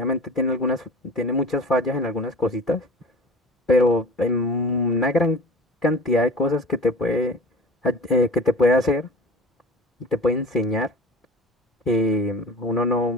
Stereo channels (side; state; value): both; normal; correlation 0.39